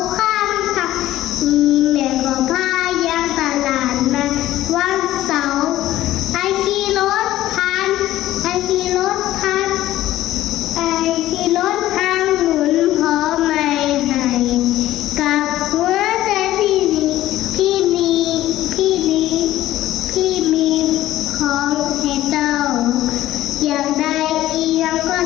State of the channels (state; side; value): quieter; right; 14.6 dB